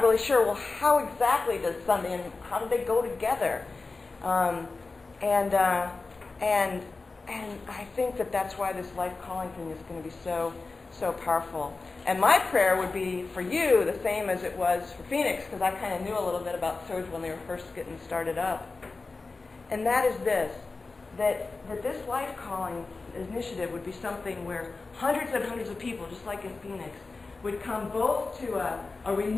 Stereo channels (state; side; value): quieter; right; 3.8 dB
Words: really sure, well, how exactly does Sunday and how do they go together? And I think that's why this life calling thing is going to be so powerful. And my prayer would be for you the same as it was for Phoenix, because I kind of knew a little bit about Surge when they were first getting started up. And that is this, that this life calling initiative would be something where hundreds and hundreds of people, just like in Phoenix, would come both to a